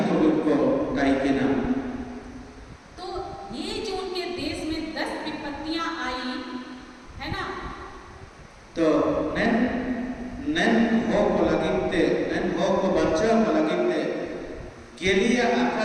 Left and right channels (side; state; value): both; identical; correlation 1.00